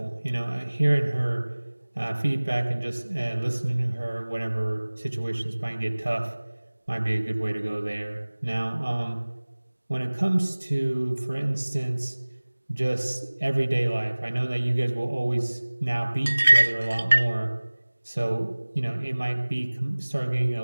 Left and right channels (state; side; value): inverted; both; correlation -1.00